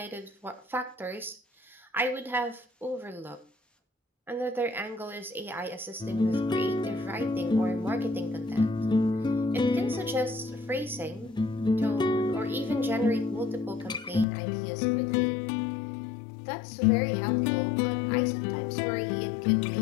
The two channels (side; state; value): right; drops out; at 14.2 s